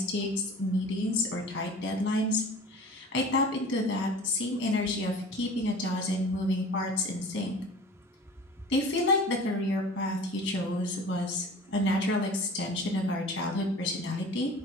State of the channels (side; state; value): both; normal; correlation 0.41